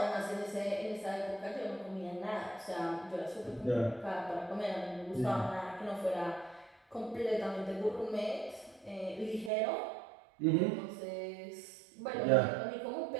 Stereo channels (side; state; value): left; drops out; at 9.5 s